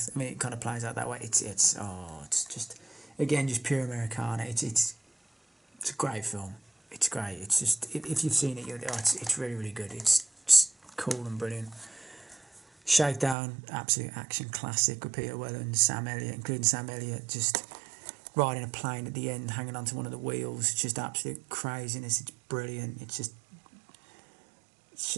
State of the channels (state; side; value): drops out; left; at 13.4 s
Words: I mean, it kind of plays out that way. It's just, again, just pure Americana. It's a great film. It's great. It's just, if you've seen it, it's really, really good. It's just cool and brilliant. Shakedown, absolute action classic with Peter Weller and Sam Elliott, including Sam Elliott, just riding a plane at the end, hanging onto one of the wheels. Just absolute craziness. It's brilliant. It's